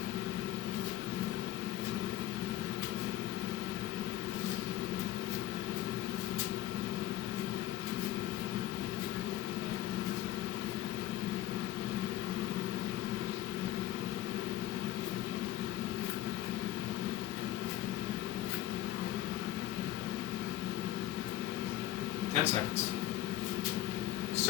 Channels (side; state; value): right; quieter; 14.7 dB